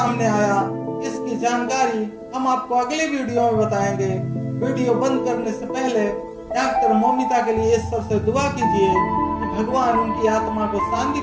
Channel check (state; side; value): identical; both; correlation 1.00